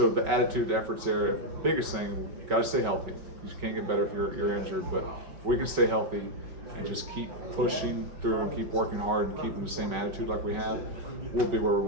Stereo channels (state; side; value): late; left; 5.3 ms